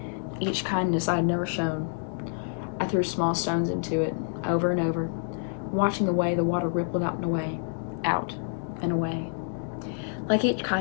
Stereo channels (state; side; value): silent; right; digital silence